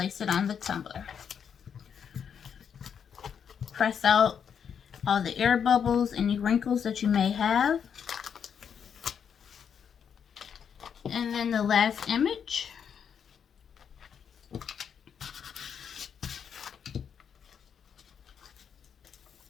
it on the tumbler. Press out all the air bubbles, any wrinkles that you may have. And then the last image.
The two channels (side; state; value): right; quieter; 7.5 dB